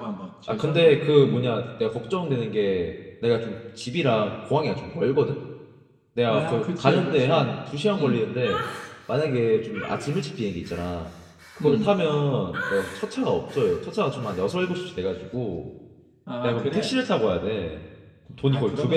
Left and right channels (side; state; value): both; identical; correlation 1.00